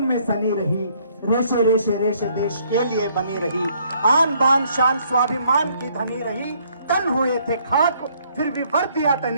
में सनी रही, रेशे रेशे रेशे देश के लिए बनी रही, आन बान शान स्वाभिमान की धनी रही। तन हुए थे खाक फिर भी वर्दियां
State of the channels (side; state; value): both; inverted; correlation -0.66